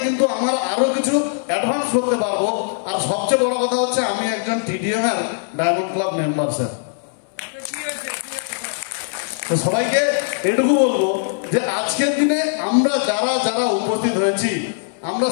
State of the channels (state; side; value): silent; right; digital silence